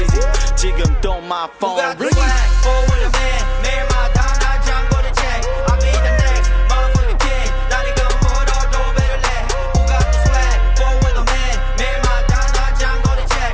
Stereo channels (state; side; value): identical; both; correlation 1.00